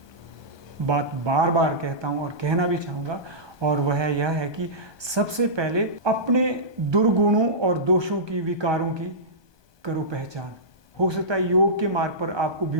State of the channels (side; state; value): left; late; 1.2 ms